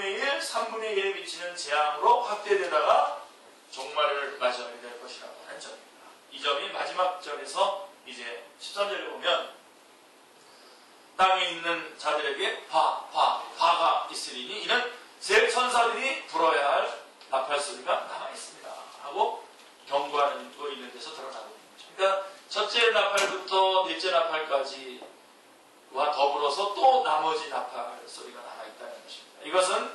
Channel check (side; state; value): both; identical; correlation 1.00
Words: 1, 3분의 1에 미치는 재앙으로 확대되다가 종말을 맞이하게 될 것이라고 하는 점입니다. 이 점이 마지막 절에서 이제 13절에 보면 땅에 있는 자들에게 화가 있으리니 이는 새 천사들이 불어야 할 나팔 소리가 남아있습니다 하고 경고하는 거 있는 데서 드러나고 있는 거죠. 그러니까 첫째 나팔부터 넷째 나팔까지와 더불어서 또 나머지 나팔 소리가 남아있다는 것입니다.